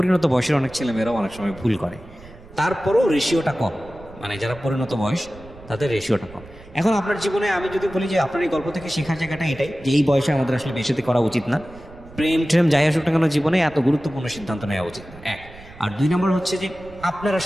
বয়সের অনেক ছেলেমেয়েরাও অনেক সময় ভুল করে। তারপরেও রেশিওটা কম, মানে যারা পরিণত বয়স তাদের রেশিওটা কম। এখন আপনার জীবনে আমি যদি বলি যে আপনার এই গল্প থেকে শেখার জায়গাটা এটাই, যে এই বয়সে আমাদের আসলে বেশিতে করা উচিত না, প্রেম ট্রেম যাই আসুক না কেন জীবনে এত গুরুত্বপূর্ণ সিদ্ধান্ত নেওয়া উচিত না, এক। আর 2 নম্বর হচ্ছে যে আপনার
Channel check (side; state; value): right; noise; rumble, 20 dB below the sound